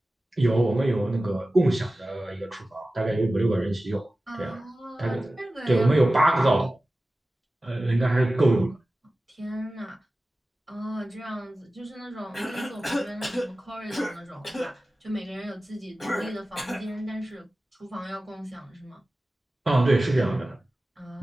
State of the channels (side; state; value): both; normal; correlation 0.96